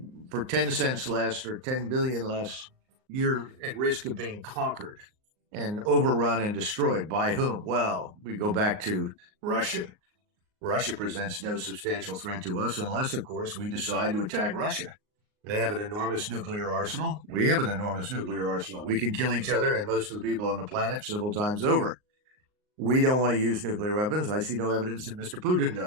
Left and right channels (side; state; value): left; late; 38 ms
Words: for 10 cents less or 10 billion less, you're at risk of being conquered and overrun and destroyed. By whom? Well, we go back to Russia. Russia presents no substantial threat to us unless, of course, we decide to attack Russia. They have an enormous nuclear arsenal. We have an enormous nuclear arsenal. We can kill each other and most of the people on the planet several times over. We don't want to use nuclear weapons. I see no evidence that Mr. Putin